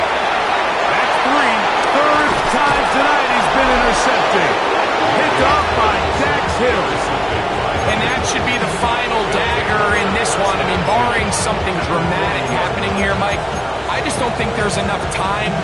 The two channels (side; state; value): both; identical; correlation 1.00